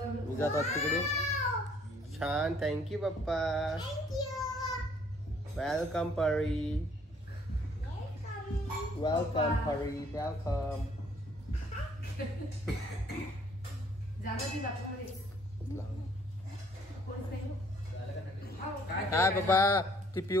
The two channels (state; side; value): normal; both; correlation 0.61